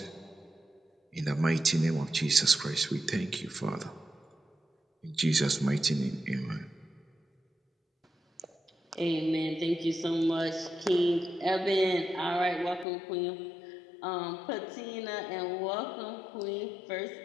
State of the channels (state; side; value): drops out; right; at 12.9 s